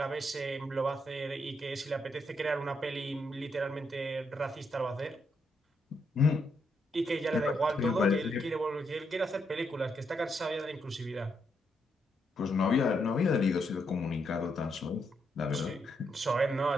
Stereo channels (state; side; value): normal; both; correlation 0.78